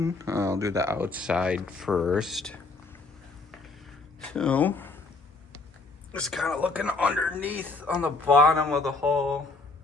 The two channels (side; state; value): right; quieter; 3.6 dB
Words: I'll do the outside first. So, just kind of looking underneath on the bottom of the hull.